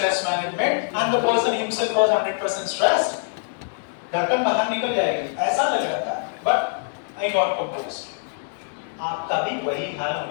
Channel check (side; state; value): right; silent; 63 dB below the other